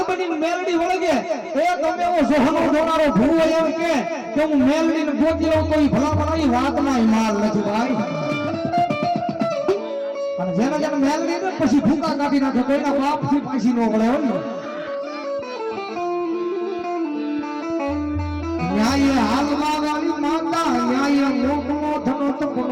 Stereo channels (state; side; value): identical; both; correlation 1.00